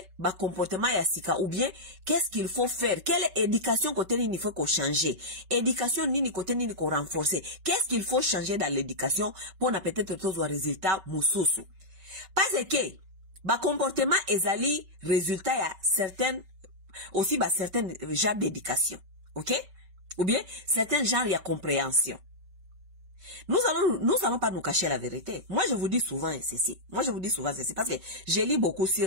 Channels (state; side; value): late; left; 5.3 ms